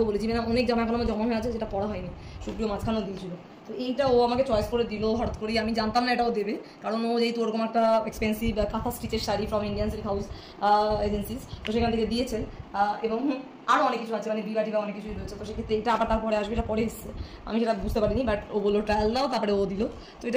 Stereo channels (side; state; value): both; identical; correlation 1.00